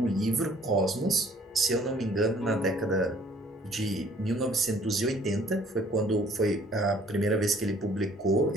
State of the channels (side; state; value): both; normal; correlation 0.58